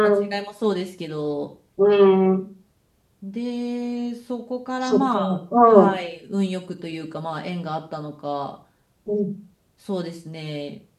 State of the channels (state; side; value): identical; both; correlation 1.00